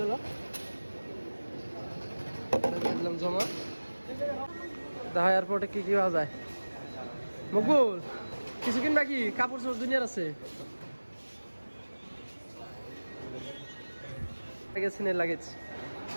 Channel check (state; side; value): inverted; both; correlation -1.00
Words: গেল দিলাম জমা দেখা এয়ারপোর্টে কি পাওয়া যায় মকবুল কিছু কিনবা কি কাপড় চোপড় দুনিয়ার আছে লাগেজ